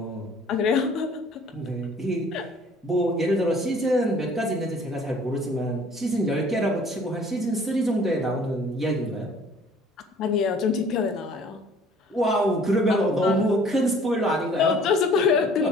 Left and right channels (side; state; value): both; normal; correlation 0.53